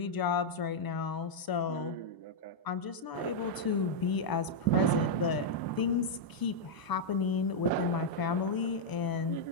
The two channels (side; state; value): right; late; 1.0 ms